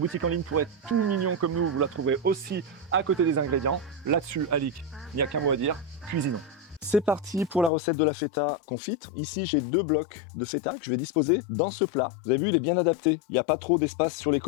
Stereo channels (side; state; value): right; drops out; at 7.7 s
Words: en ligne pour être tout mignon comme nous, vous la trouverez aussi à côté des ingrédients. Là-dessus, Alix, il n'y a qu'un mot à dire, cuisinons. C'est parti pour la recette de la feta confite. Ici, j'ai 2 blocs de feta que je vais disposer dans ce plat. Vous avez vu, il est bien adapté. Il n'y a pas trop d'espace sur les